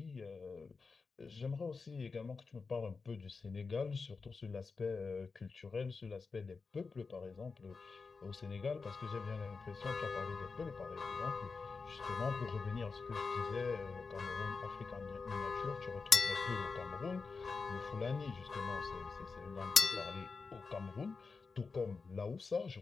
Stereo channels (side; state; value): right; quieter; 4.6 dB